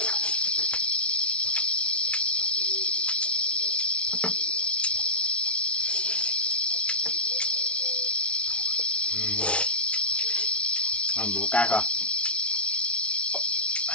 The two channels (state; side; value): late; right; 0.060 ms